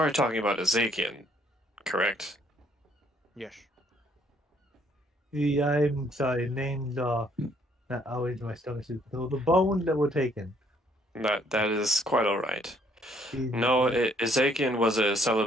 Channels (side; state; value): both; normal; correlation 0.65